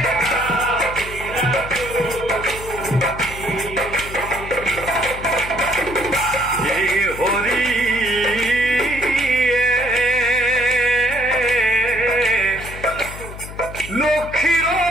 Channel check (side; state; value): left; noise; hum, 12 dB below the sound